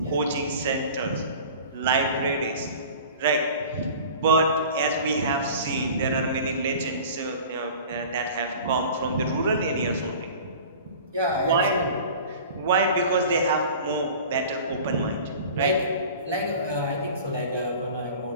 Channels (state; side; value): inverted; both; correlation -0.41